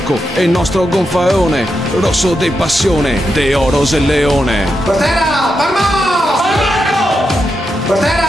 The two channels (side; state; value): both; normal; correlation 0.86